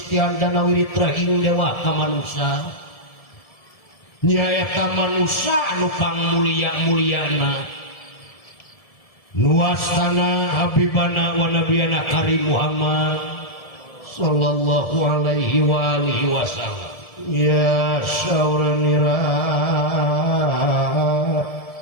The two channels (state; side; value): late; right; 1.7 ms